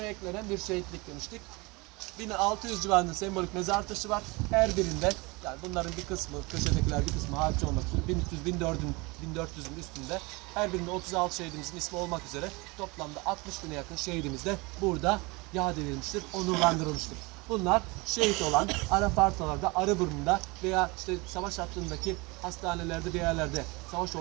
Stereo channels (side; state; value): left; quieter; 25.6 dB